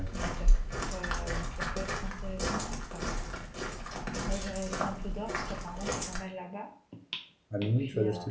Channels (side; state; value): both; identical; correlation 1.00